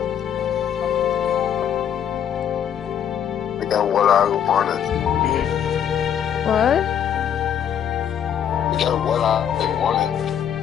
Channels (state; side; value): quieter; right; 9.0 dB